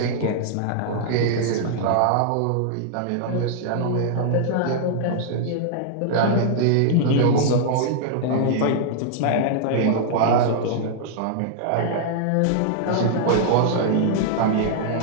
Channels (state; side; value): different; both; correlation -0.01